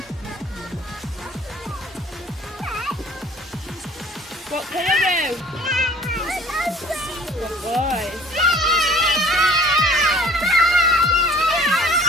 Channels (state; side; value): normal; both; correlation 0.51